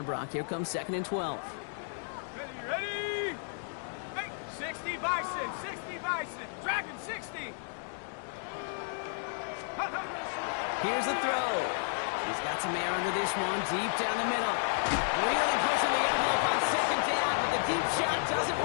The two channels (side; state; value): right; silent; digital silence